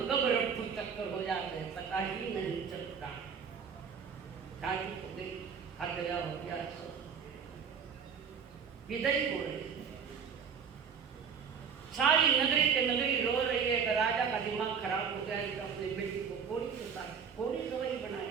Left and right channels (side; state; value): left; quieter; 6.5 dB